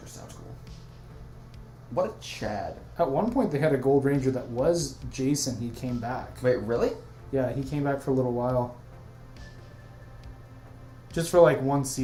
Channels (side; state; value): both; identical; correlation 1.00